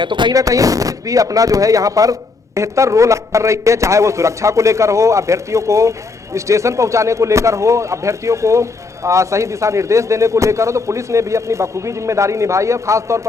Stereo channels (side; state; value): right; quieter; 4.0 dB